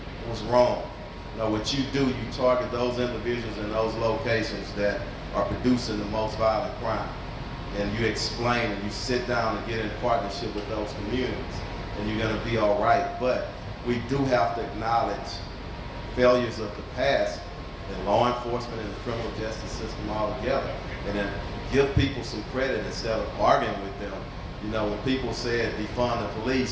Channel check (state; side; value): identical; both; correlation 1.00